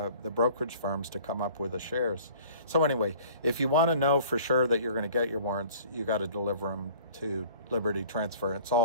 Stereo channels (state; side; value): inverted; both; correlation -0.49